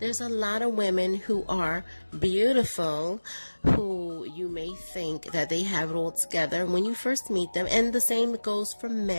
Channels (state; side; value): inverted; both; correlation -1.00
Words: a lot of women who are beautiful, who you may think that they have it all together when you first meet them, and the same goes for